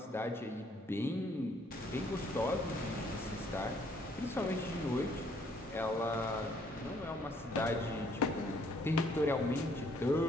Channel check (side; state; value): both; normal; correlation 0.65